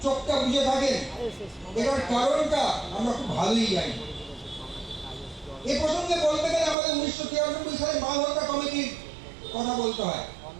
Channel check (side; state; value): left; drops out; at 6.8 s